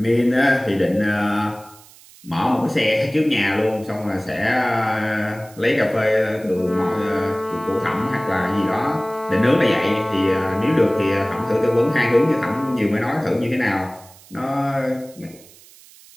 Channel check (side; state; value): right; noise; hiss, 24 dB below the sound